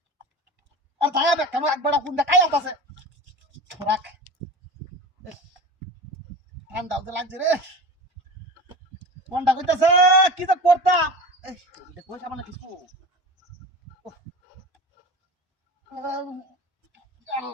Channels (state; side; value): normal; both; correlation 0.32